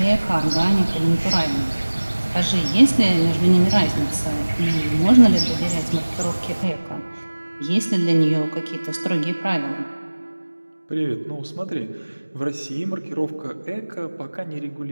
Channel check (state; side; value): inverted; both; correlation -1.00